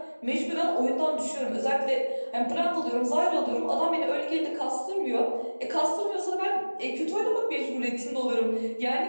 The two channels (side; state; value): both; inverted; correlation -1.00